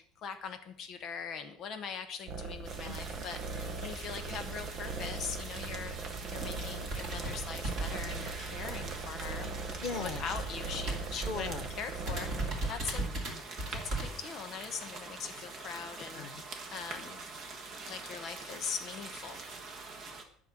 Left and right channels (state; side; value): normal; both; correlation 0.45